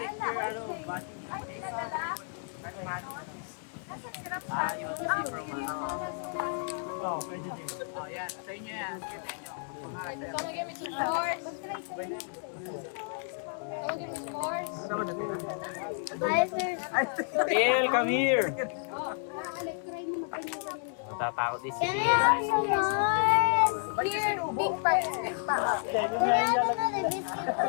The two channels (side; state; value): right; silent; 57 dB below the other